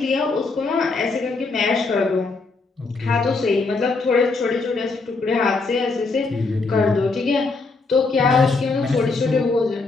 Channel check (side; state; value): right; quieter; 3.9 dB